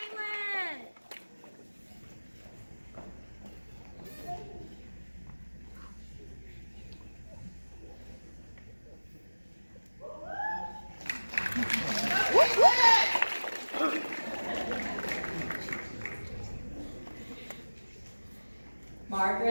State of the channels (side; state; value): both; inverted; correlation -1.00